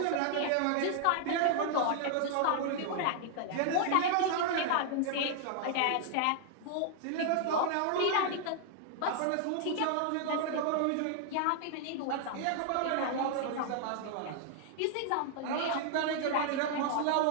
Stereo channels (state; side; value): different; both; correlation 0.00